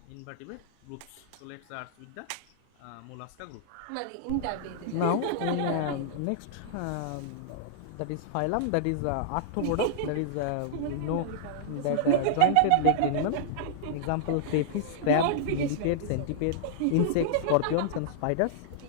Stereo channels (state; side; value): different; both; correlation -0.02